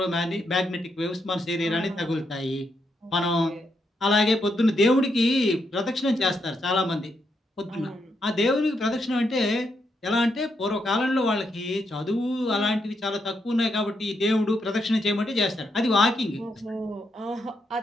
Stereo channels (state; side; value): normal; both; correlation 0.80